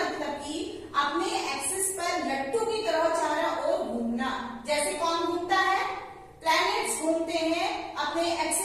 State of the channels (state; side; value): identical; both; correlation 1.00